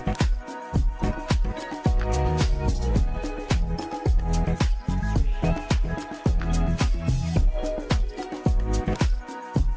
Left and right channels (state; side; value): identical; both; correlation 1.00